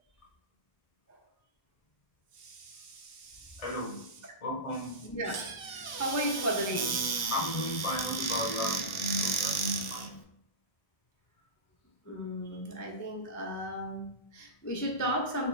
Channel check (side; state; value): right; late; 1.1 ms